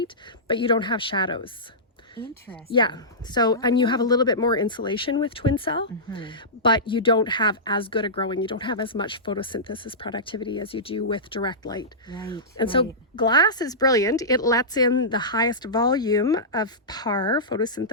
but you don't have shadows. Interesting. Yeah. So, and you have a little bit more insulation with twin cell, but you don't have as good a growing, you don't have as much photosynthesis productivity as you do with direct light. Right. And so glass is brilliant. It lets in the highest volume of PAR,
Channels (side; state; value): both; normal; correlation -0.17